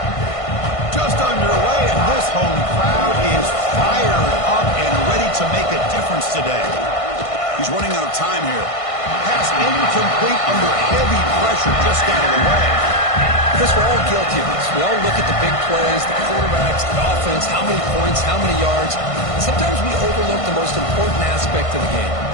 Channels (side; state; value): right; late; 1.5 ms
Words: Just underway, and this home crowd is fired up and ready to make a difference today. He's running out of time here. Pass incomplete under heavy pressure, just got it away. Chris, we're all guilty of this. We all look at the big plays, the quarterbacks, the offense, how many points, how many yards. Sometimes we overlook the most important aspect of the game,